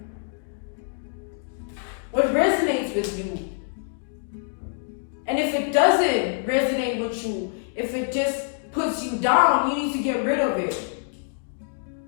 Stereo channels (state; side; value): silent; right; digital silence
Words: what resonates with you? And if it doesn't resonate with you, if it just puts you down, you need to get rid of it.